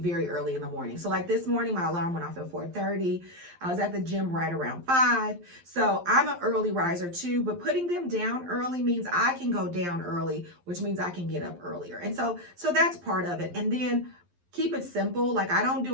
early in the morning. So like this morning, my alarm went off at 4:30. I was at the gym right around 5. So I'm an early riser too, but putting them down early means I can go down early, which means I can get up earlier. And so that's part of it. And then keep it simple. Like I don't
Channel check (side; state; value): left; late; 11 ms